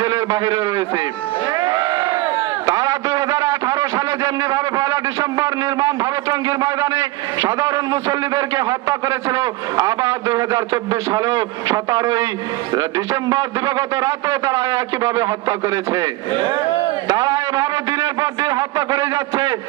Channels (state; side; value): quieter; left; 19.0 dB